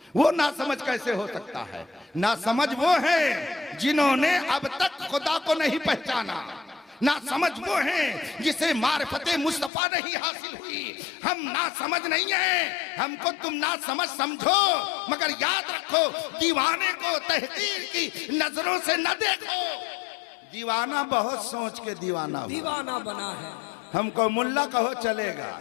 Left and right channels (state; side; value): drops out; right; at 9.7 s